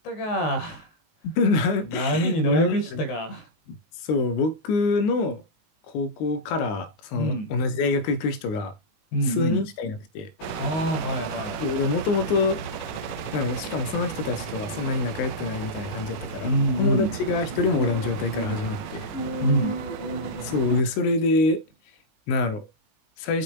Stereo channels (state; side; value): late; right; 19 ms